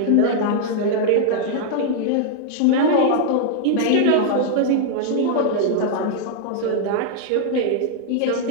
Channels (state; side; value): different; both; correlation -0.01